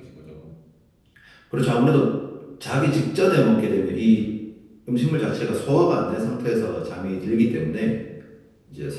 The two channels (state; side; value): identical; both; correlation 1.00